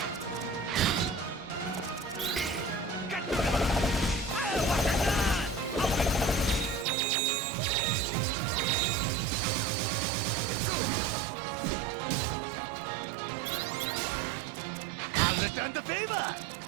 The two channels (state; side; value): drops out; left; at 6.9 s